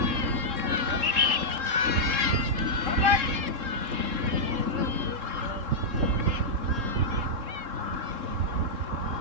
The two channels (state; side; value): late; left; 3.7 ms